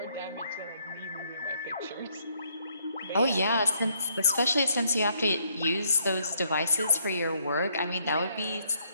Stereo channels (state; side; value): inverted; both; correlation -0.71